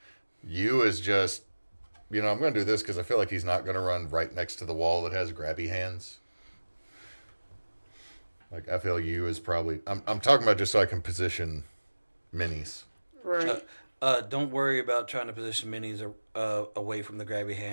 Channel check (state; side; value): inverted; both; correlation -1.00